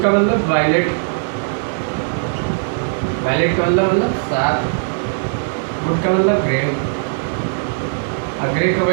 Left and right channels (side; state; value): left; silent; digital silence